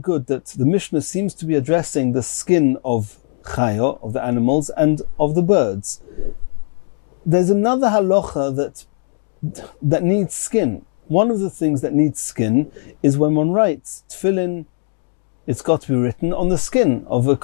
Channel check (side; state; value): right; silent; 58 dB below the other